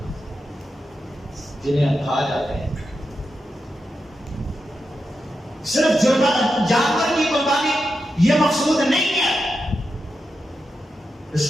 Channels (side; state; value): both; normal; correlation 0.88